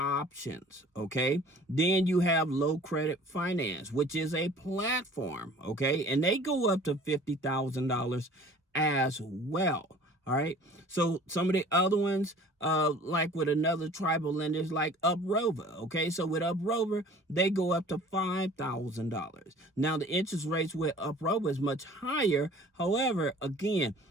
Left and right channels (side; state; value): both; normal; correlation 0.48